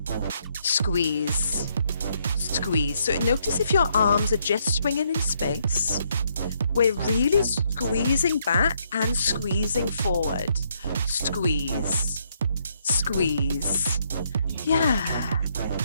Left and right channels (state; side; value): inverted; both; correlation -0.73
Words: Squeeze, squeeze. So notice if your arms are just swinging in space. We're really squeezing back and squeezing forward. Squeeze, squeeze. Yeah.